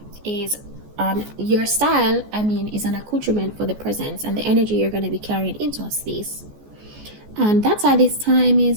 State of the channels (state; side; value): late; left; 14 ms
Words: is your style, is an accoutrement for the presence and the energy you're going to be carrying into a space. And that's why this time